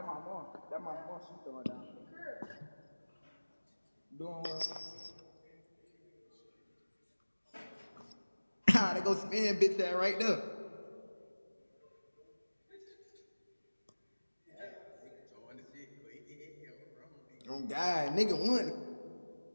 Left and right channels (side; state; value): both; inverted; correlation -1.00